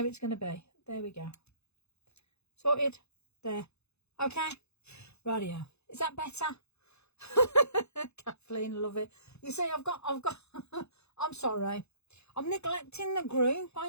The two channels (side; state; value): right; late; 0.80 ms